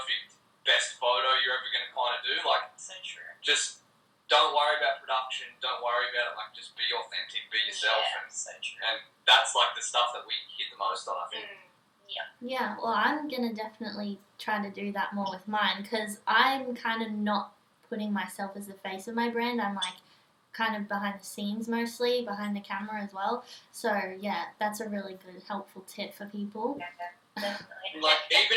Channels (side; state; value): both; identical; correlation 1.00